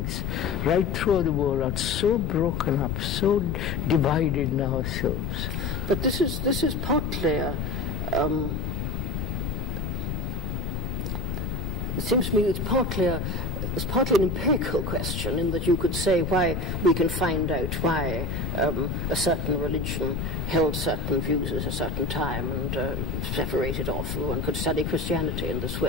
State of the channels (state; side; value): noise; left; rumble, 3 dB below the sound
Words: right through the world, are so broken up, so divided in ourselves. But this is partly it seems to me it's partly an empirical question, in that you could say why we can find out why a certain religion held certain views at a certain time and separated off. One could study Christianity in this